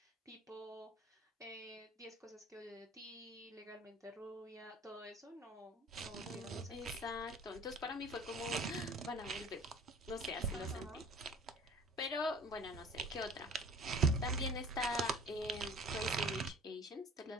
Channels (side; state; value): both; normal; correlation 0.47